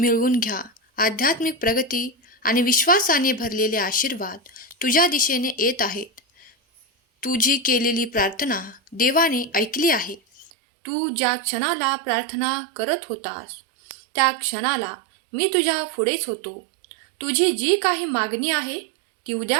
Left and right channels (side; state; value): left; drops out; at 10.5 s